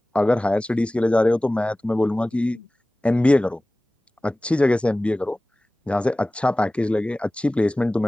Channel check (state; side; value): normal; both; correlation 0.98